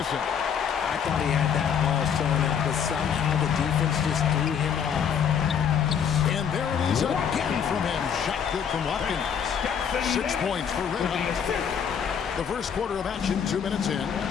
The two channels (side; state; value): right; quieter; 7.7 dB